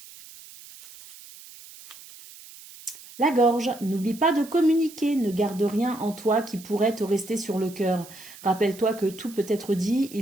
La gorge, n'oublie pas de communiquer, ne garde rien en toi qui pourrait te rester sur le cœur. Rappelle-toi que tout peut être dit,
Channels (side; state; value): right; noise; hiss, 19 dB below the sound